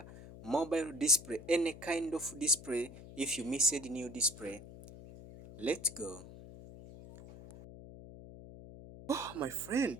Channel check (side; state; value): left; noise; hum, 16 dB below the sound